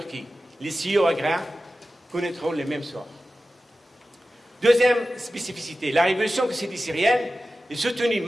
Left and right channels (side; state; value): both; normal; correlation 0.94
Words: Les CEO agraires connaîtront les mêmes sorts. Deuxième spécificité, la révolution que s'est dit syrienne est soutenue